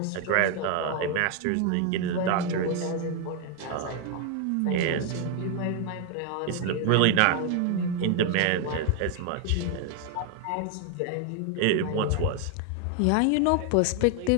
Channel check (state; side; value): different; both; correlation 0.01